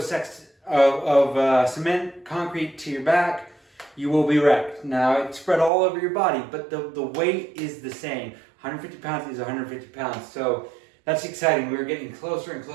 sacks of cement, concrete to your back, you will be wrecked. Now, it's spread all over your body, but the weight is the same. 150 pounds is 150 pounds, so that's exciting. We're getting closer and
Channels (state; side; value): drops out; left; at 5.7 s